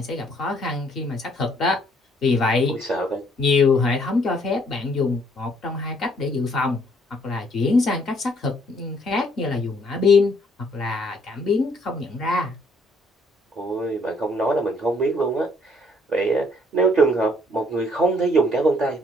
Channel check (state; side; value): normal; both; correlation 0.65